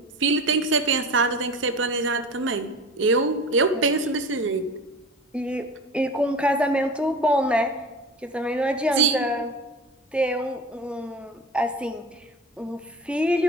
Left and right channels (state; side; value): normal; both; correlation 0.34